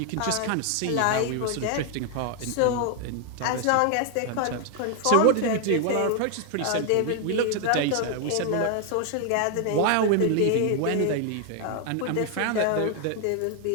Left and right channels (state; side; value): different; both; correlation 0.00